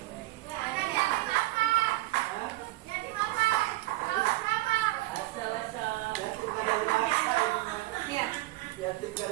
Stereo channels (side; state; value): left; quieter; 19.1 dB